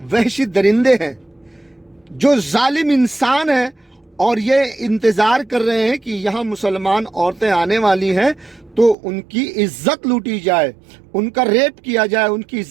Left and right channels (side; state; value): left; drops out; at 9.0 s